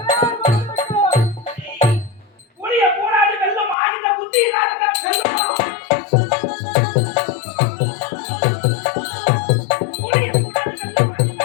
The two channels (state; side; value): drops out; right; at 3.8 s